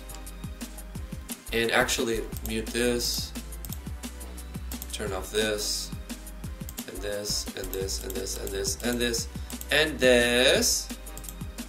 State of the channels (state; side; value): identical; both; correlation 1.00